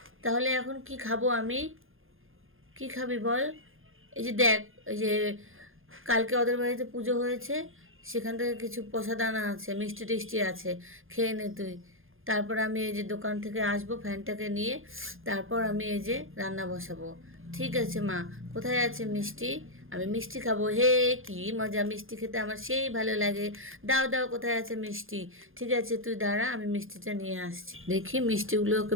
তাহলে এখন কি খাবো আমি? কি খাবি বল? এই যে দেখ, এই যে কালকে ওদের বাড়িতে পুজো হয়েছে, সেখান থেকে কিছু প্রসাদ আনা আছে, মিষ্টি টিষ্টি আছে, খেয়ে নে তুই। তারপর আমি এই যে দোকান থেকে আসবো ফ্যানটাকে নিয়ে, তারপর আমি এই যে রান্না বসাবো। ঠিক আছে মা, কোথায় আছে মিষ্টি? আমি মিষ্টি খাবো। হে কি মজা, মিষ্টি খেতে আমার সেই ভালো লাগে। দাও দাও, কোথায় আছে মিষ্টি? ঠিক আছে তুই দাঁড়া, আমি মিষ্টিটা নিয়ে আসছি। দেখি মিষ্টিগুলো ওকে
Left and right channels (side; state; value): left; late; 0.59 ms